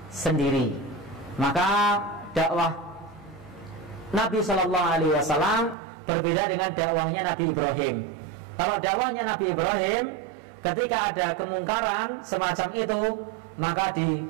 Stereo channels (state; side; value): drops out; left; at 5.8 s